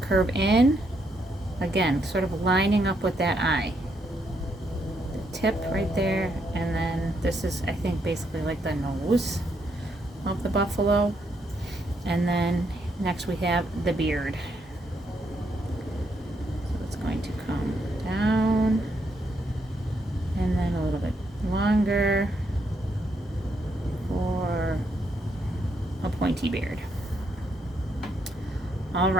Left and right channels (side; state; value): both; normal; correlation 0.76